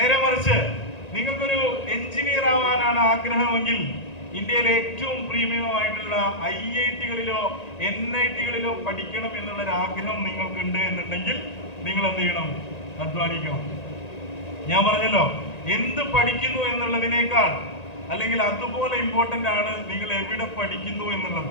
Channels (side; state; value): right; late; 1.9 ms